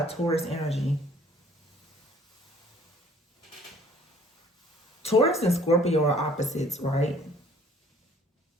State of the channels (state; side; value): normal; both; correlation 0.56